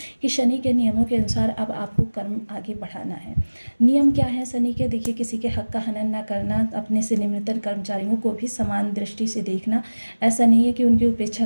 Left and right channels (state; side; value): inverted; both; correlation -1.00